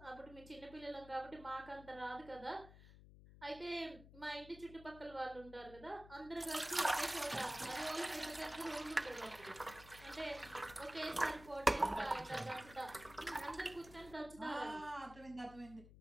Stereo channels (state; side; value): noise; left; hum, 18 dB below the sound